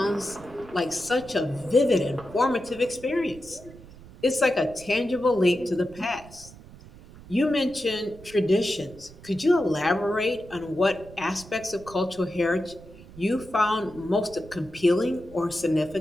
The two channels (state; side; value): noise; right; rumble, 19 dB below the sound